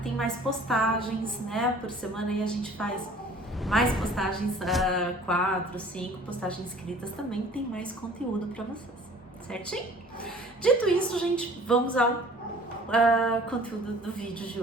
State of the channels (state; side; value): normal; both; correlation 0.50